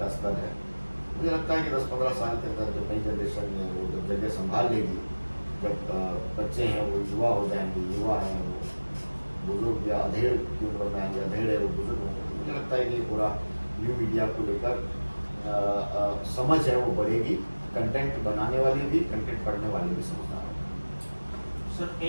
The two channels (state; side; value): inverted; both; correlation -1.00